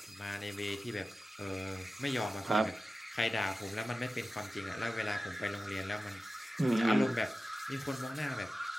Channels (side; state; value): both; normal; correlation 0.94